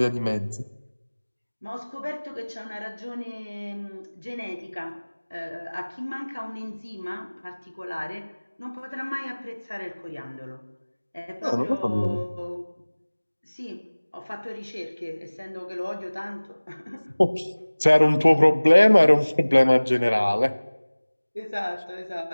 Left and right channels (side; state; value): both; inverted; correlation -1.00